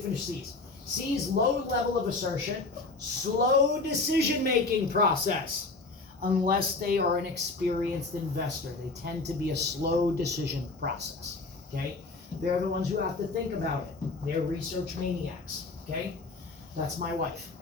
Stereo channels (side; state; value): right; quieter; 3.5 dB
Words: C's. C's, low level of assertion, slow decision-making process. Unless they are an experienced investor, they tend to be a slow decision process, okay? They're the ones who have to think about it. They're research maniacs, okay? That's my wife.